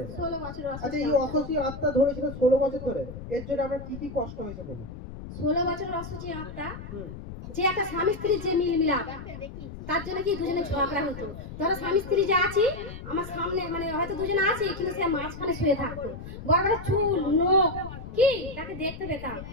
16 বছর। আচ্ছা, এই অসুখী আত্মা ধরেছিল 16 বছর ধরে, এর জন্য আপনার কি কি কষ্ট হয়েছে বলুন? 16 বছর অসুখী আত্মা, যে একটা স্বামী স্ত্রীর যে মিল মিলাপ, তার জন্য কি দুজনে ঝগড়া হতো। ধরো স্বামী স্ত্রী যে আছি আমার সামনে, মানে হয়তো দুজনে আছি কিন্তু সে মাঝখানে শুয়ে থাকতো, বড় বড় চুল, নখ, কি তাকে দেখতে পেতাম।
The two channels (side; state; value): left; noise; rumble, 11 dB below the sound